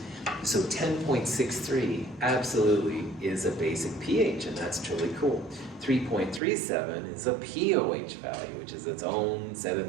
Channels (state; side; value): drops out; left; at 6.4 s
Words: So 10.63 absolutely is a basic pH, and that's truly cool. 3.37 is a POH value, which is its own set